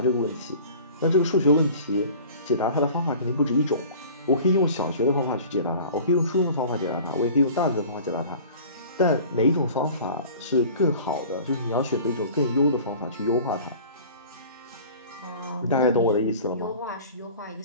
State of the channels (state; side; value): inverted; both; correlation -0.43